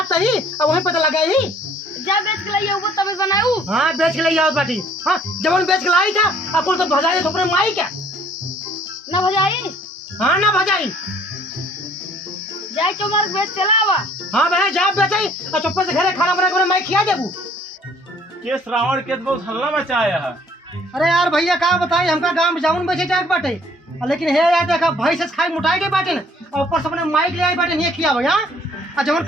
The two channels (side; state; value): both; normal; correlation 0.58